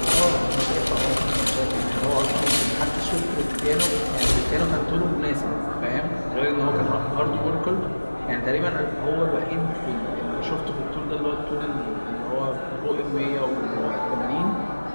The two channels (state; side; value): inverted; both; correlation -1.00